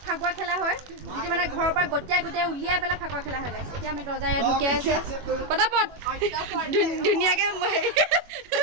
ফাকুৱা খেলা হয় যিটো মানে ঘৰৰ পৰা গোটেই উলিয়াই পেলাই ফাকুৱা খেলা হয় গাইছ এতিয়া আমি দৰ্জা ইয়াত ঢুকিয়াই আছে পটাপট ধুনীয়াকৈ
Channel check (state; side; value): late; left; 21 ms